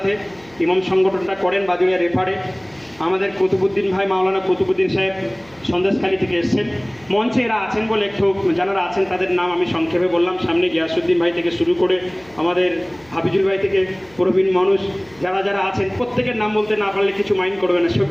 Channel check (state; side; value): noise; left; hum, 28 dB below the sound